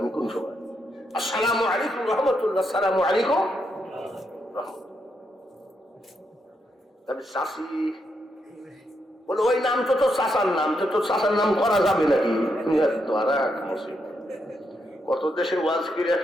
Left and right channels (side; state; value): both; normal; correlation 0.80